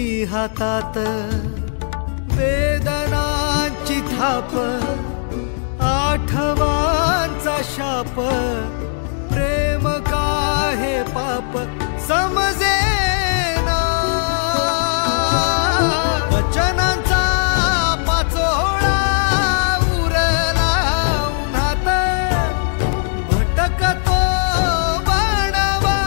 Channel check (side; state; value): right; silent; digital silence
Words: हातात. वेदनांची थाप आठवांचा शाप. प्रेम का हे पाप समजेना. वचनांचा पाचोळा उरला उन्हात. भटकतो बाण